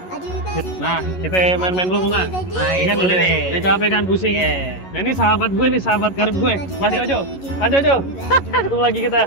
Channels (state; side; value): late; right; 11 ms